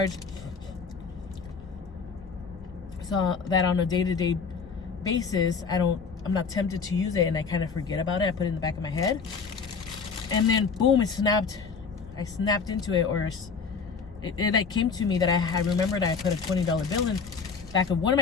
so that on a day-to-day basis, I'm not tempted to use it, and I kind of forget about it. I put it in the back of my head, and then boom, it snapped. I snapped into it, or it like came to me that I remembered I put a $20 bill in back of one of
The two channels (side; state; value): right; quieter; 5.3 dB